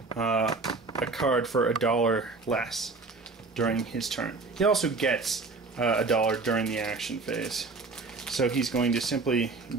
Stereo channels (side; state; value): left; quieter; 3.9 dB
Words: a card for $1 less during his turn. He also gets $1 during the action phase. So he's going to simply